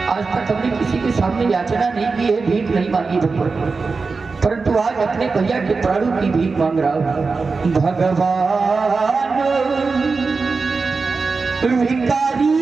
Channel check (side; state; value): left; quieter; 4.4 dB